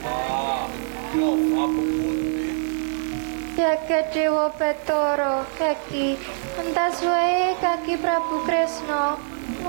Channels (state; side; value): silent; left; 56 dB below the other